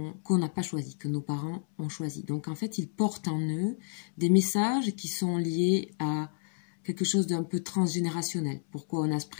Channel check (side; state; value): right; silent; 58 dB below the other